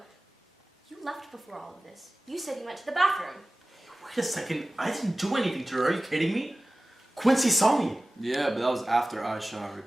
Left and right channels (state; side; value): normal; both; correlation 0.97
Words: You left before all of this. You said you went to the bathroom. Wait a second. I didn't do anything to her. Are you kidding me? Quincy saw me. Yeah, but that was after I showered,